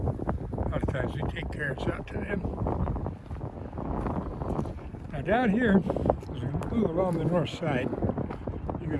lot of times we take carrots out to them. Now down here, as we move along the north side, you you're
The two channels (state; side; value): identical; both; correlation 1.00